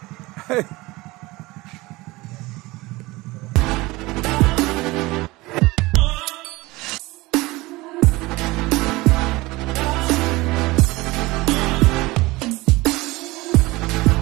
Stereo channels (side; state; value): left; quieter; 21.2 dB